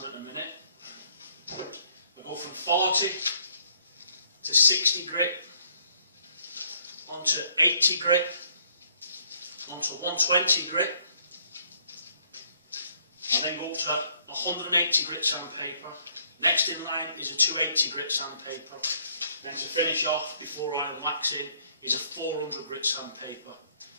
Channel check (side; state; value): both; inverted; correlation -0.66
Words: at the minute. I go from 40 to 60 grit, onto 80 grit, onto 120 grit, and then go up to 180 grit sandpaper. Next in line is a 280 grit sandpaper. Then to finish off before I wax in is a 400 grit sandpaper.